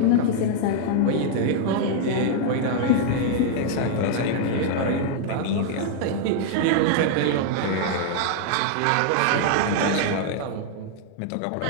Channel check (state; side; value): different; both; correlation 0.00